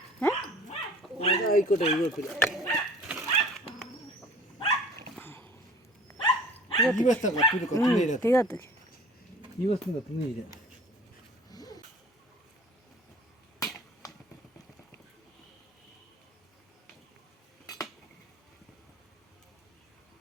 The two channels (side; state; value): both; normal; correlation 0.46